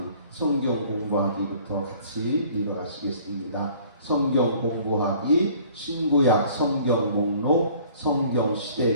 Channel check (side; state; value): both; inverted; correlation -0.53